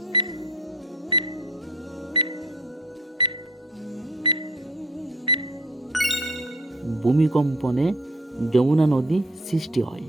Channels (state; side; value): normal; both; correlation 0.52